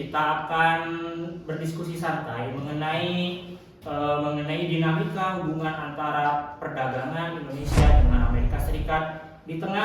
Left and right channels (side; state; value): both; identical; correlation 1.00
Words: akan berdiskusi santai mengenai dinamika hubungan antara perdagangan Indonesia dengan Amerika Serikat di